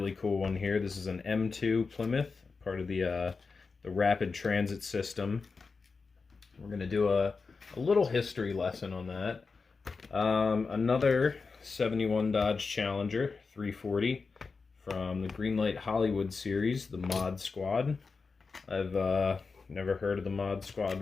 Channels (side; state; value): right; quieter; 4.6 dB